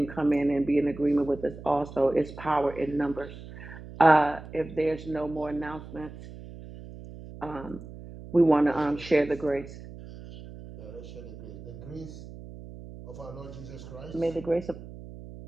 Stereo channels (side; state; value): right; noise; hum, 14 dB below the sound